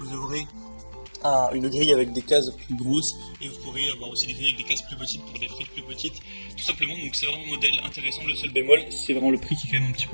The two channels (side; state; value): both; inverted; correlation -1.00